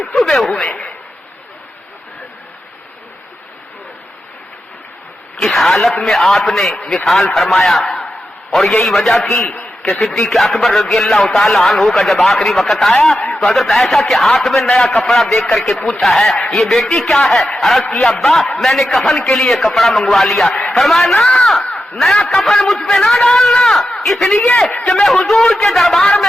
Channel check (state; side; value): normal; both; correlation 0.89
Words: چبھے ہوئے۔ اس حالت میں آپ نے وصال فرمایا، اور یہی وجہ تھی کہ صدیق اکبر رضی اللہ تعالی عنہ کا جب آخری وقت آیا تو حضرت عائشہ کے ہاتھ میں نیا کپڑا دیکھ کر کے پوچھا ہے یہ بیٹی کیا ہے؟ عرض کیا ابا میں نے کفن کے لیے کپڑا منگوا لیا۔ فرمایا نا، نیا کفن مجھ پہ نہ ڈالنا، اس لیے کہ میں حضور کے دربار